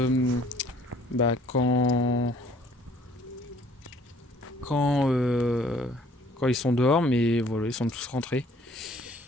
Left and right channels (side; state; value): both; normal; correlation 0.58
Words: quand ils sont dehors, mais voilà, ils sont tous rentrés.